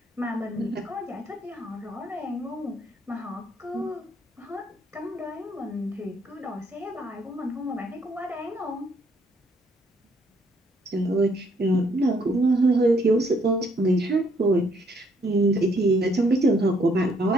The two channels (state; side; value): normal; both; correlation 0.68